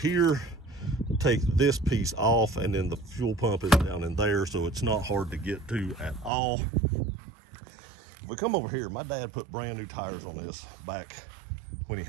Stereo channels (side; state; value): left; drops out; at 6.3 s